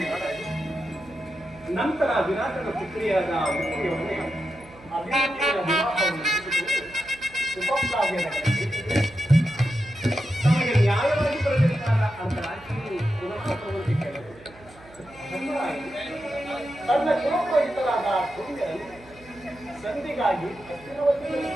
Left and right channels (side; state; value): right; noise; hum, 23 dB below the sound